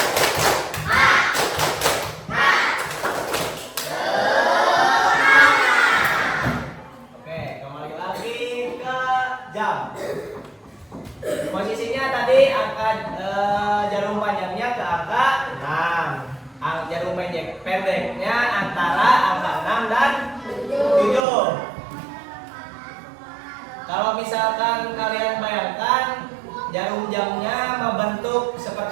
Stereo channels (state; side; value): drops out; left; at 21.2 s